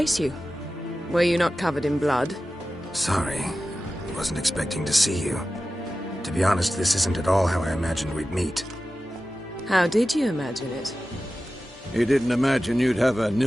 you. Were you not covered in blood? Sorry. Wasn't expecting to see you. To be honest, this isn't at all how I imagined we'd meet. How did you imagine it? You didn't imagine you'd have a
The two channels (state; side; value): normal; both; correlation 0.94